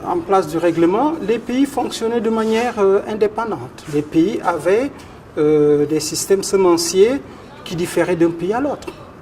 place du règlement, les pays fonctionnaient de manière indépendante. Les pays avaient des systèmes semenciers qui différaient d'un pays à l'autre.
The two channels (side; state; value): both; identical; correlation 1.00